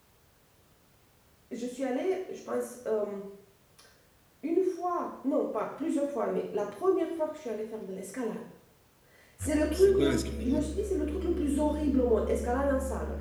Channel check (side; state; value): both; identical; correlation 1.00